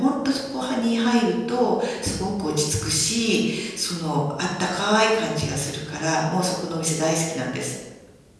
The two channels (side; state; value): both; identical; correlation 1.00